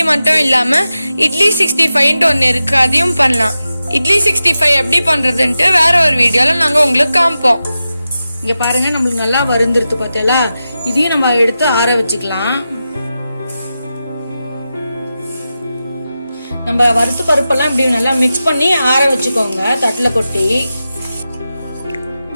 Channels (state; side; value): inverted; both; correlation -0.92